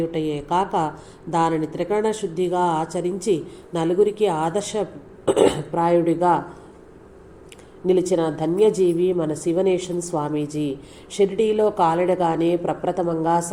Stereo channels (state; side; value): identical; both; correlation 1.00